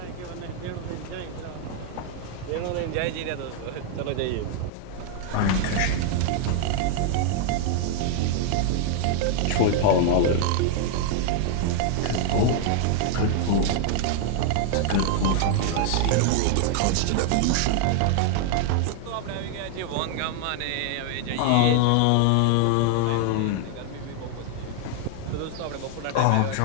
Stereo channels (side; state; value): both; different; correlation 0.00